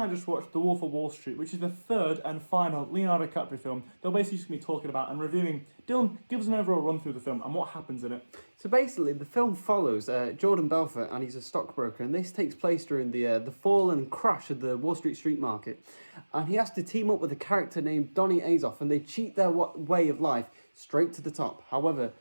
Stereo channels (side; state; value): both; inverted; correlation -1.00